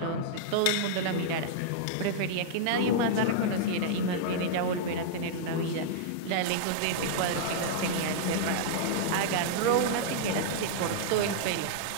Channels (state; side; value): different; both; correlation -0.02